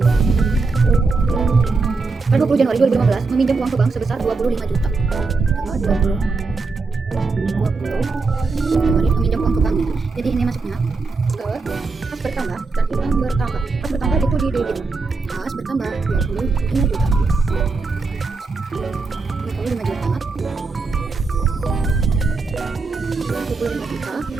pada 20 Januari 2015 meminjam uang ke bank sebesar 25 juta. Tanggal 20 Januari meminjam uang ke bank. Jadi ini masuknya ke kas bertambah dan utang bertambah. Kas bertambah itu di debit. Kas bertambah 25 juta. 25 juta. 25 juta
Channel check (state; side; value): quieter; left; 4.0 dB